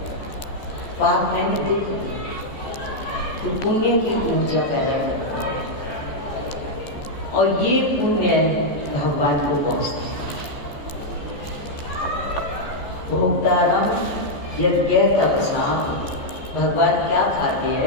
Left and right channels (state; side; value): late; right; 14 ms